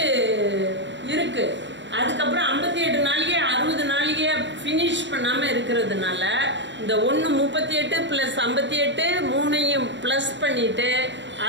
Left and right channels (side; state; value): left; late; 0.53 ms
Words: இருக்குது. அதுக்கப்புறம் 58 நாளிகை 60 நாளிகையை ஃபினிஷ் பண்ணாமல் இருக்கிறதுனால இந்த 1:38 + 58 3ஐயும் ப்ளஸ் பண்ணிவிட்டு